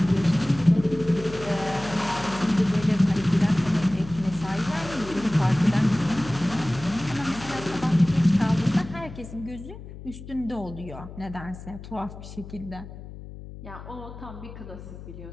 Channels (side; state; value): left; noise; hum, 14 dB below the sound